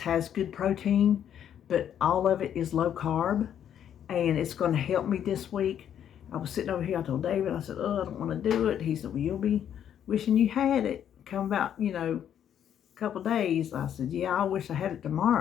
good protein, but all of it is low carb, and it's going to help me this week. I was sitting over here, I told David, I said, I don't want to do it. He said, well, you'll be wishing you had it. Come about, a couple days. I said, yeah, I wish I had it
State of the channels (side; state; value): right; quieter; 9.6 dB